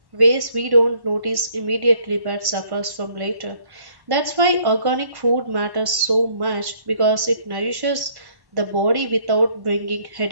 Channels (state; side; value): late; left; 1.1 ms